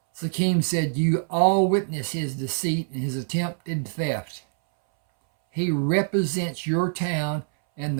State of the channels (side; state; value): left; silent; 62 dB below the other